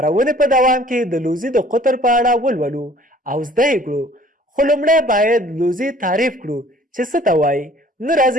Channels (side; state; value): both; normal; correlation 0.53